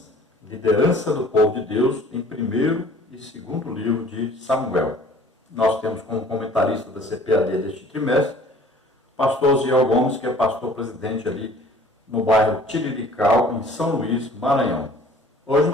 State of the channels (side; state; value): both; normal; correlation 0.51